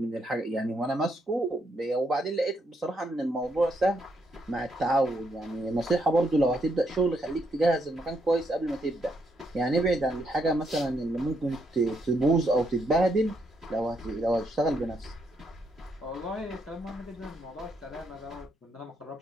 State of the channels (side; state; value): both; normal; correlation 0.76